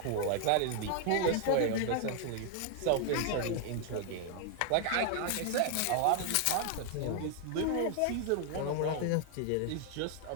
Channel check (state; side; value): different; both; correlation 0.00